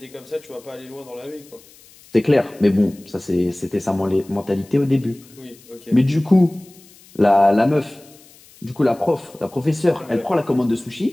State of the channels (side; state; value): left; noise; hiss, 25 dB below the sound